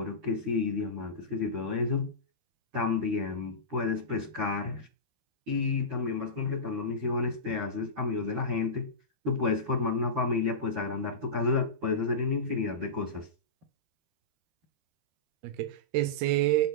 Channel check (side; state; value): left; late; 13 ms